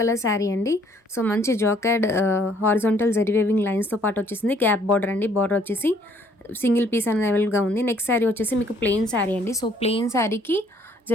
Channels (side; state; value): both; normal; correlation 0.62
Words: కలర్ శారీ అండి. సో మంచి జాకెడ్ హారిజాంటల్ జరీ వేవింగ్ లైన్స్తో పాటు వచ్చేసింది. గ్యాప్ బార్డర్ అండి, బార్డర్ వచ్చేసి సింగిల్ పీస్ అనేది అవైలబుల్గా ఉంది. నెక్స్ట్ శారీ వచ్చేసి మీకు ప్లెయిన్ శారీ అండి. సో ప్లెయిన్ శారీకి